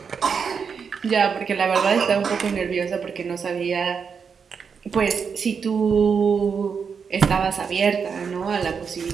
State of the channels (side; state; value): left; quieter; 6.2 dB